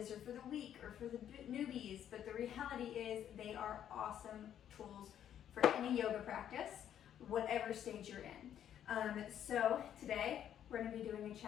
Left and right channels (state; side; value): quieter; right; 10.1 dB